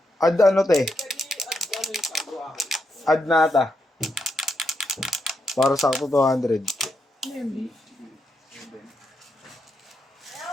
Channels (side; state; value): both; normal; correlation 0.82